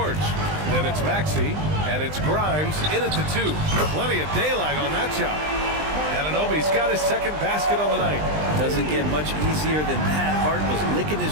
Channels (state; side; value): late; left; 20 ms